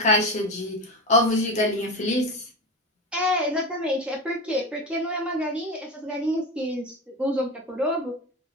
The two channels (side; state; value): both; normal; correlation 0.23